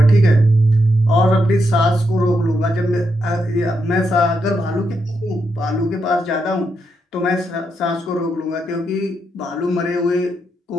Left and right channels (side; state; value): both; normal; correlation 0.82